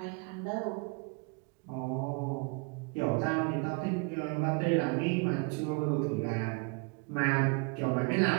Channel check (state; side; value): quieter; left; 31.8 dB